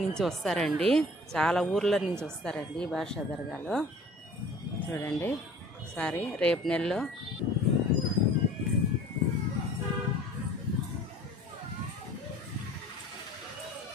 నుంచి వస్తారండి, చాలా ఊర్ల నుంచి వస్తారండి బారాషా దర్గాలో. చూడండి సారీ, రేపు నెలలో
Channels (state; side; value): normal; both; correlation 0.47